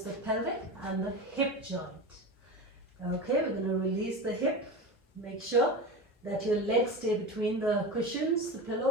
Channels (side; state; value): both; normal; correlation 0.26